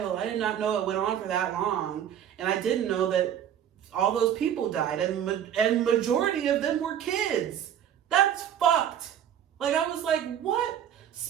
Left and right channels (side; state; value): left; quieter; 9.8 dB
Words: I did not know it went on for that long, and I didn't know that all those people died, and majority of them were kids. That's fucked. Like, I was like, what?